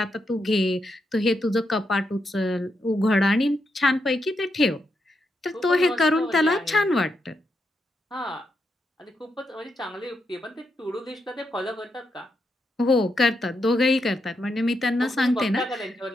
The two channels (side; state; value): both; normal; correlation 0.82